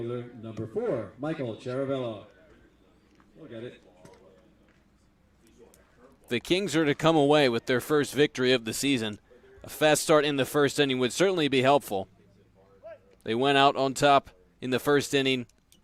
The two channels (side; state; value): both; identical; correlation 1.00